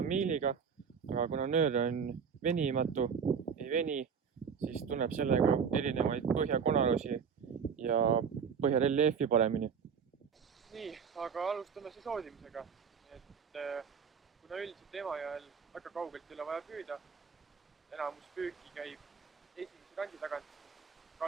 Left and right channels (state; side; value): quieter; left; 6.7 dB